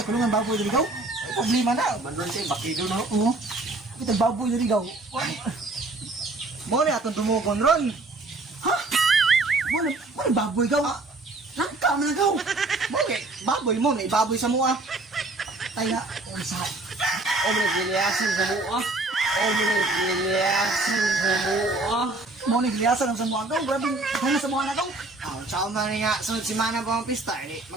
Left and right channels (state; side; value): quieter; left; 3.1 dB